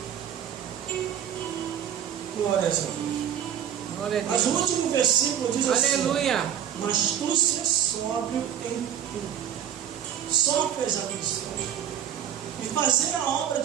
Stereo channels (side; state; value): left; quieter; 9.8 dB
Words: Glória a Deus. Glória a Mas Deus. o último versículo diz assim: Aleluia. mas tu se sóbrio em tudo. Sofre as aflições. E fazer a obra